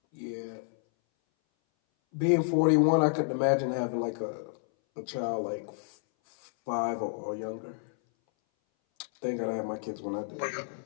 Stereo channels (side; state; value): right; silent; 58 dB below the other